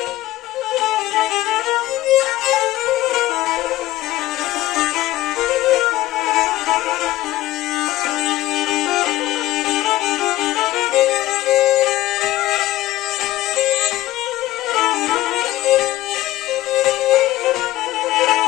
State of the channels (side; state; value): right; quieter; 16.0 dB